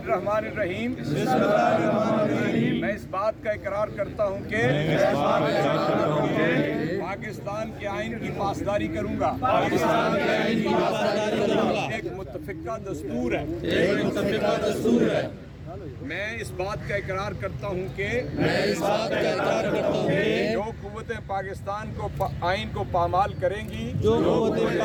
الرحمن الرحیم میں اس بات کا اقرار کرتا ہوں کہ پاکستان کے آئین کی پاسداری کروں گا۔ ایک متفقہ دستور ہے۔ میں اس بات کا اقرار کرتا ہوں کہ جو قوتیں پاکستان کو آئین کو پامال کریں گی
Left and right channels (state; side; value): identical; both; correlation 1.00